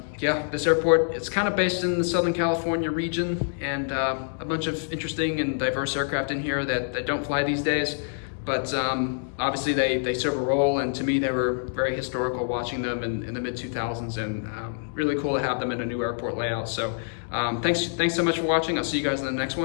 yeah, this airport, it's kind of based in the Southern California region, and a bunch of interesting and diverse aircraft in here that don't fly these days. But obviously they serve a role, and to me they were very historical watching them in the mid-2000s, and really cool to have them in a new airport layout. So thanks so much for watching. I'll see you guys in the next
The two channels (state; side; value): silent; right; digital silence